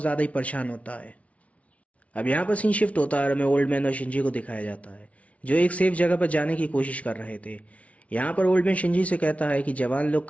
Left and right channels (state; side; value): late; right; 0.065 ms